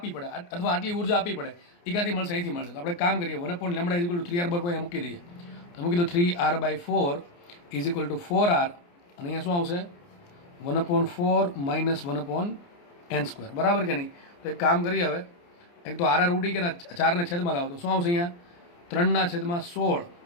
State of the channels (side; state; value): right; late; 29 ms